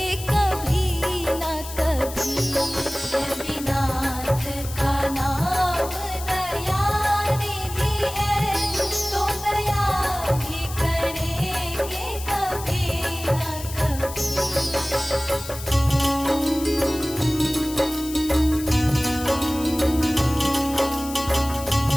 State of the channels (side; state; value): left; noise; hiss, 12 dB below the sound